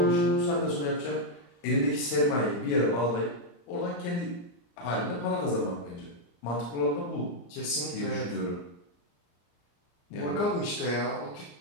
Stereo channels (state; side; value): late; right; 34 ms